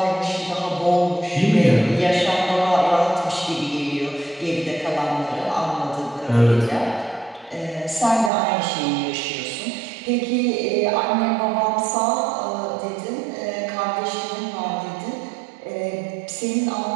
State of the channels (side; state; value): left; drops out; at 8.3 s